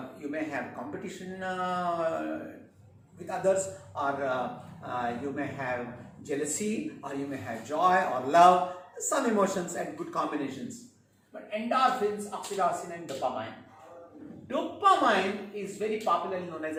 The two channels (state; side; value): identical; both; correlation 1.00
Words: You may have competition with others, or you may have jealousy, or you may have joy or love, some emotions and good combinations. But endorphins, oxytocin and dopamine. Dopamine is very popularly known as